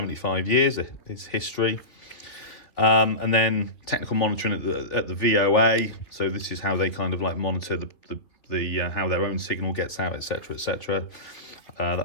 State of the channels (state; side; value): late; right; 3.0 ms